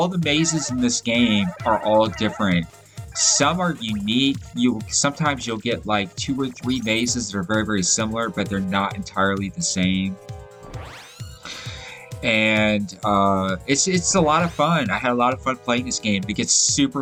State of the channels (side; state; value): both; identical; correlation 1.00